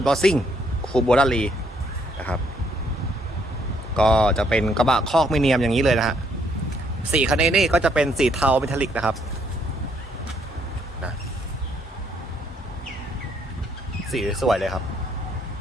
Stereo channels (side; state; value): both; normal; correlation 0.70